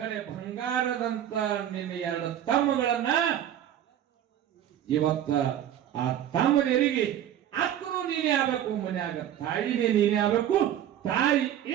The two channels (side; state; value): left; quieter; 10.9 dB